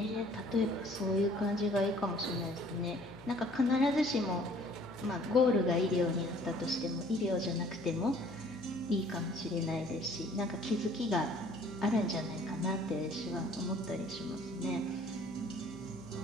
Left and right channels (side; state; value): left; noise; hum, 19 dB below the sound